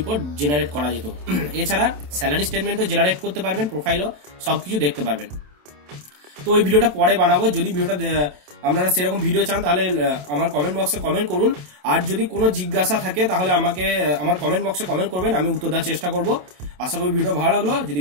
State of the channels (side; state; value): left; late; 27 ms